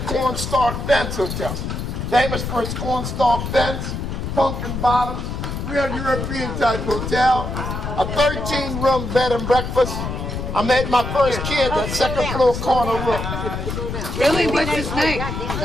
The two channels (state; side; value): noise; left; rumble, 4 dB below the sound